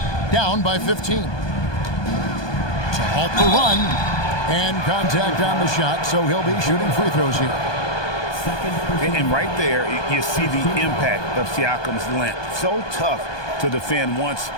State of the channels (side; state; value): right; late; 1.2 ms